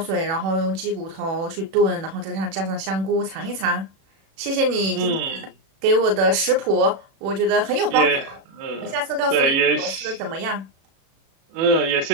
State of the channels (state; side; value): late; left; 36 ms